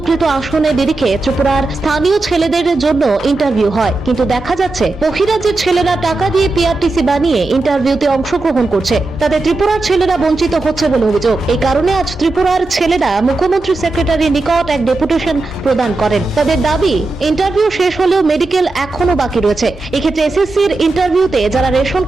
আসনের নিরিখে ত্রিপুরার স্থানীয় ছেলেদের জন্য ইন্টারভিউ হয়, কিন্তু দেখা যাচ্ছে বহিরাজ্যের ছেলেরা টাকা দিয়ে পিআরটিসি বানিয়ে ইন্টারভিউতে অংশগ্রহণ করছে। তাতে ত্রিপুরার ছেলেরা বঞ্চিত হচ্ছে বলে অভিযোগ। এই কারণে আজ ত্রিপুরার ছেলেরা মুখ্যমন্ত্রী সেক্রেটারির নিকট এক ডেপুটেশন প্রদান করেন। তাদের দাবি, ইন্টারভিউ শেষ হলেও মেডিকেল এখনো বাকি রয়েছে। এক্ষেত্রে এসএসসির ইন্টারভিউতে যারা রেশন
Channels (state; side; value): quieter; left; 3.2 dB